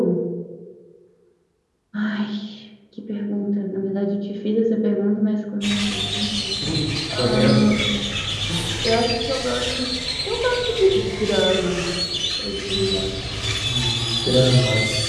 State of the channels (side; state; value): both; identical; correlation 1.00